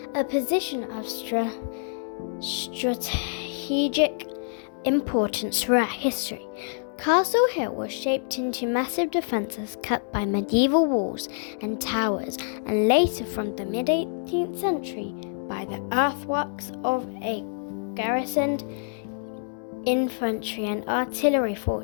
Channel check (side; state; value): right; silent; digital silence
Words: a position of strategic importance throughout history. Castle Hill was shaped into massive defences cut by medieval walls and towers, and later from the mid-18th century by the earthworks of a garrisoned infantry and artillery